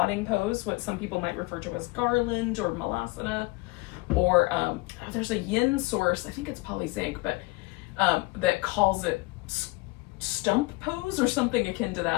pose, what some people might refer to as garland or malasana, or there's a yin source, I think it's polyzinc, but that calls it stump pose or something akin to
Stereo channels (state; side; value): quieter; right; 23.7 dB